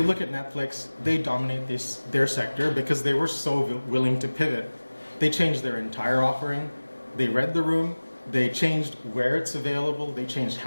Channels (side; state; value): both; inverted; correlation -1.00